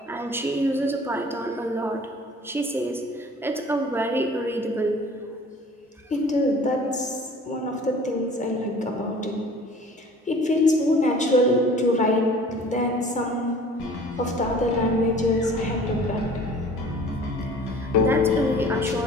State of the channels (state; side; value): normal; both; correlation 0.48